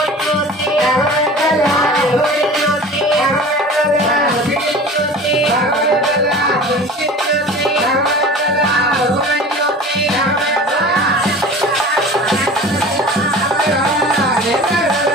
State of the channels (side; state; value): both; normal; correlation 0.39